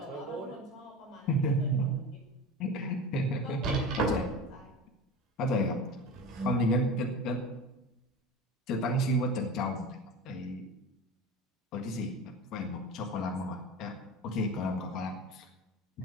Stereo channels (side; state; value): both; normal; correlation 0.31